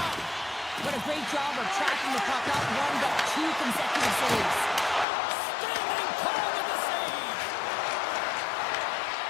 What a great job of tracking the puck, not one, but two consecutive saves. Standing tall with the save.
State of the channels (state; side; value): drops out; right; at 5.1 s